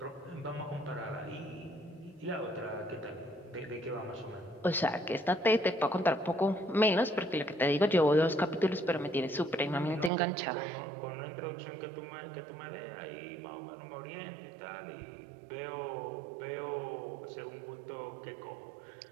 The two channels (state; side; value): drops out; left; at 10.1 s